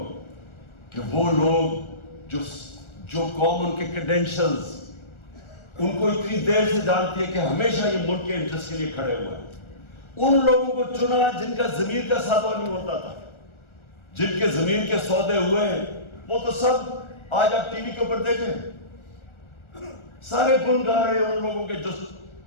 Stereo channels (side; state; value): right; late; 1.4 ms